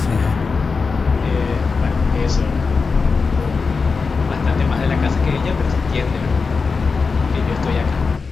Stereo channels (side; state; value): right; quieter; 4.7 dB